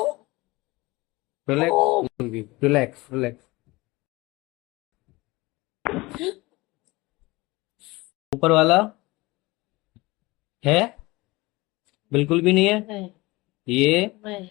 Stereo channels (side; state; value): right; quieter; 22.0 dB